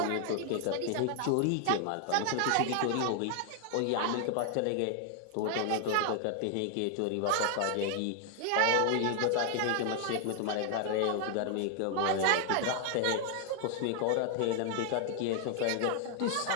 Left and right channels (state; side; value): different; both; correlation 0.00